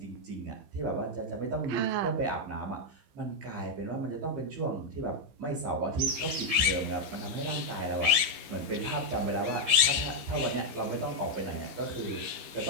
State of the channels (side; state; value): left; late; 15 ms